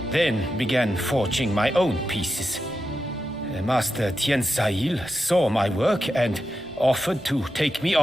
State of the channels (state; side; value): noise; right; rumble, 26 dB below the sound